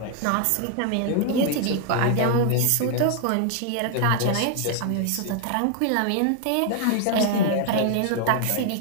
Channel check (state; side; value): different; both; correlation 0.00